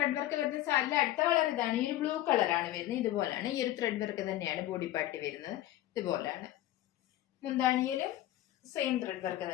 വർക്ക് വരുന്ന സാരിയുടെ അടുത്ത കളർ ഇതാണ്. ഈ ഒരു ബ്ലൂ കളറാണ് വരുന്നത്. ഇതുപോലാണ് ഈ ഒരു ത്രെഡ് വർക്ക് തന്നെയാണ് ബോഡി പാർട്ടി വരുന്നത്. ഇതുപോലാണ്. മുന്താണിയിലും സെയിം ത്രെഡ് വർക്ക്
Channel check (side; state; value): right; quieter; 14.2 dB